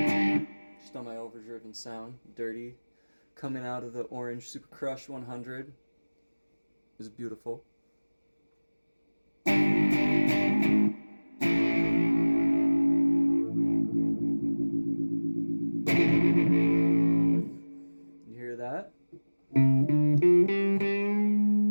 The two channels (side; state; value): both; inverted; correlation -1.00